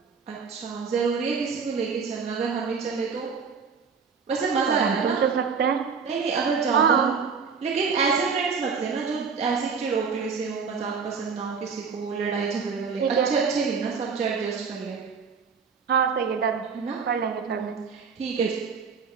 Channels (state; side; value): quieter; left; 5.7 dB